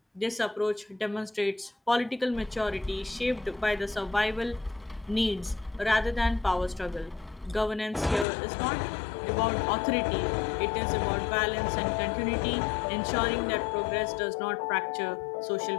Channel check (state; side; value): drops out; right; at 8.2 s